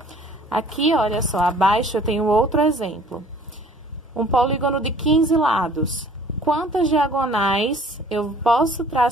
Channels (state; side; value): normal; both; correlation 0.53